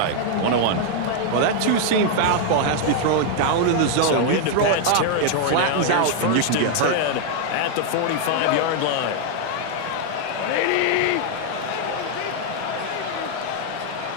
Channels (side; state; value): both; different; correlation 0.00